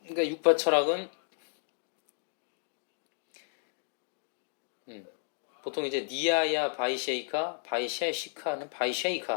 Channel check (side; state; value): right; silent; digital silence